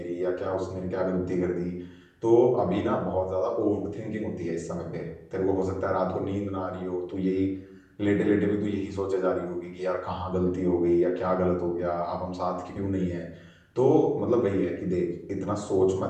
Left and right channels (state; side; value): identical; both; correlation 1.00